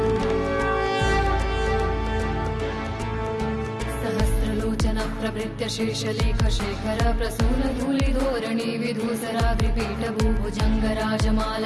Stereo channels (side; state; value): both; identical; correlation 1.00